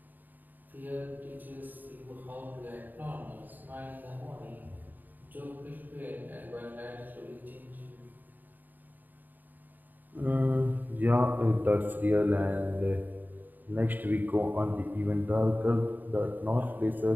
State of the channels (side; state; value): left; late; 0.088 ms